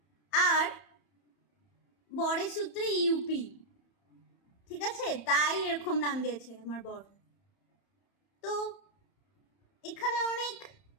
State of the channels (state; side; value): late; right; 31 ms